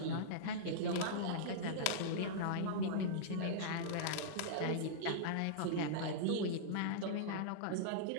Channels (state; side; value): different; both; correlation -0.03